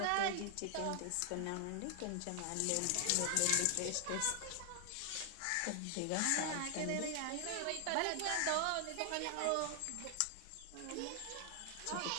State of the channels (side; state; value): both; different; correlation 0.00